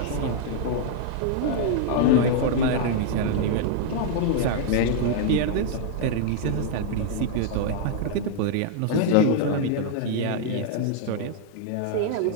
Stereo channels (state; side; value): different; both; correlation -0.01